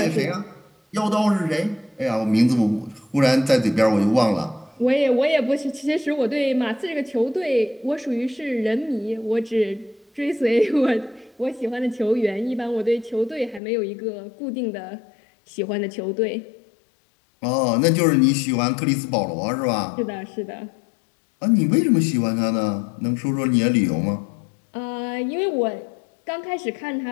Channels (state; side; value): drops out; right; at 13.6 s